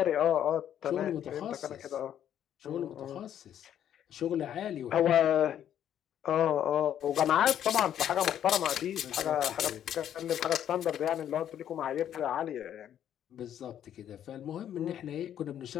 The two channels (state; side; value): quieter; right; 10.2 dB